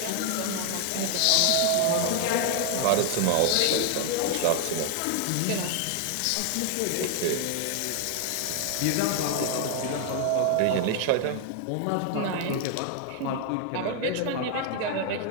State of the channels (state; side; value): different; both; correlation 0.00